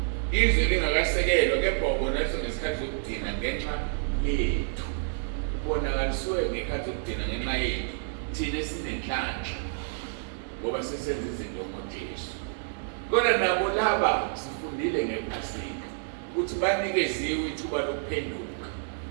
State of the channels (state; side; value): silent; left; digital silence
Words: izwi lingakasekelwa, kepha wabonakaliswa ngesikhathi sokugcina ngenxa yethu. Ubonakaliswe ngekhathi sokugcina ngenxa yethu thina esinenhlanhla ngoba sesenza izinto ngoJesu. Kodwa nabo laba sifundile ngePhasika ukuthi banikeziwe ithuba lokuphenduka.